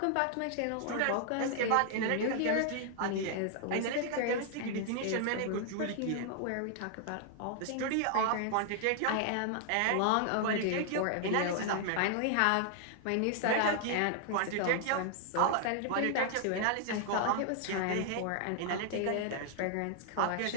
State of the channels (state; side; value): different; both; correlation 0.00